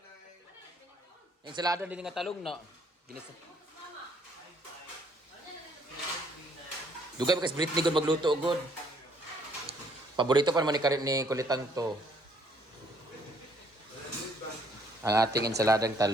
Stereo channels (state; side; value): normal; both; correlation 0.65